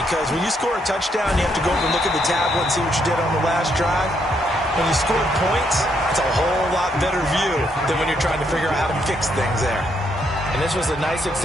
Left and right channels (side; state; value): both; normal; correlation 0.75